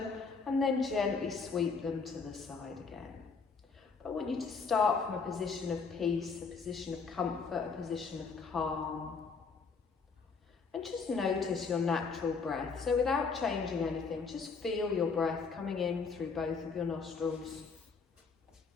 and then gently sweep them to the side again. But I want you to start from a position of peace, a position of comfort, a position of calm. And just notice your natural breath. So without changing anything, just feel your breath coming in through both of your nostrils.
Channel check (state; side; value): quieter; right; 4.9 dB